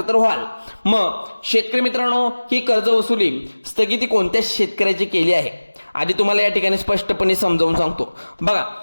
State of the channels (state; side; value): inverted; both; correlation -1.00